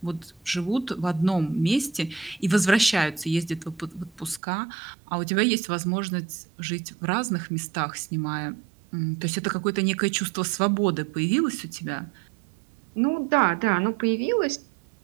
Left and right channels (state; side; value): drops out; left; at 4.4 s